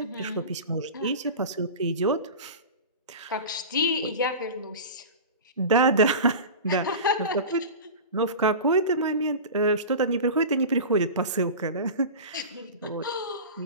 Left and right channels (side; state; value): both; inverted; correlation -0.31